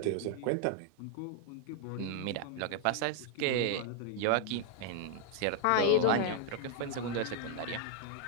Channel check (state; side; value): different; both; correlation 0.00